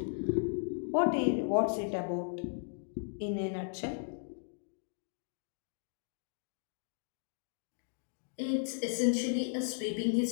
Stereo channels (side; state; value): right; silent; digital silence